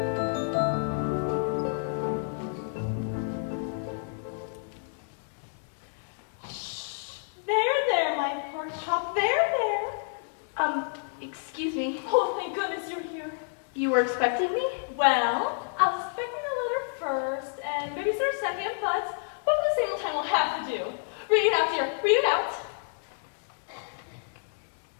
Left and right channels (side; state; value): right; silent; digital silence